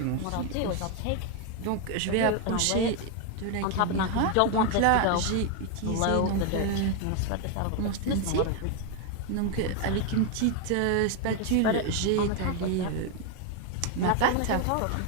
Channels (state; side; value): different; both; correlation 0.01